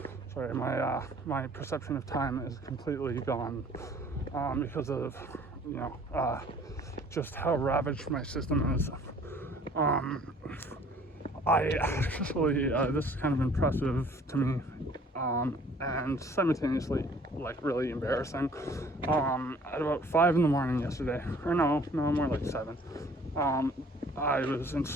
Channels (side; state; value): both; normal; correlation 0.54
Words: sorry, my perception of time is completely gone because of, just how ravaged my system is. I actually, this is kind of impressive to me, and simultaneously, really embarrassing. At about 5 in the morning yesterday, or no, more like 7, I was in